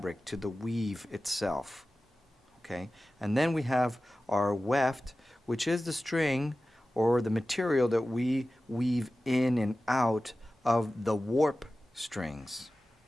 to the weave itself. Okay? And then we have our weft, which is the string or the material that we weave in and out of the warp strings.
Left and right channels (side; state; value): both; normal; correlation 0.95